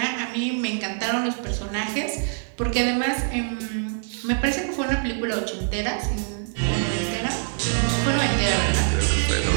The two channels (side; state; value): left; silent; 62 dB below the other